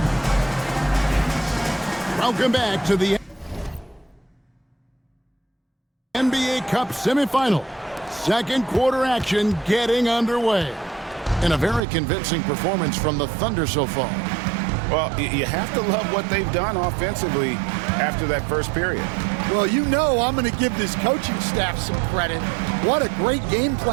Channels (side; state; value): left; drops out; at 11.8 s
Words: Welcome back to the NBA Cup semifinal. Second quarter action getting underway. And a very convincing performance from the Thunder so far. Well, you have to love what they've done offensively after that first period. Well, you know I'm going to give this coaching staff some credit. What a great game